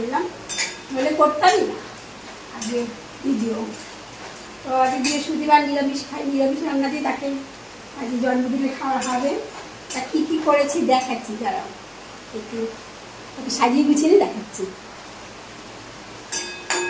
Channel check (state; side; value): identical; both; correlation 1.00